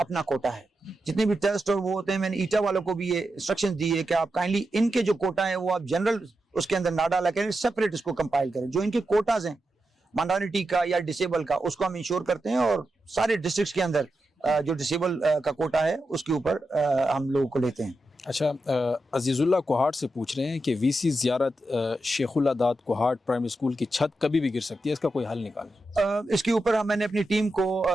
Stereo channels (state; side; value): normal; both; correlation 0.88